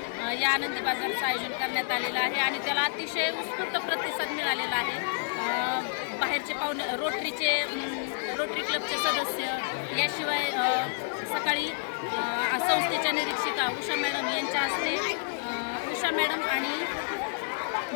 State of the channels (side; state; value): right; silent; digital silence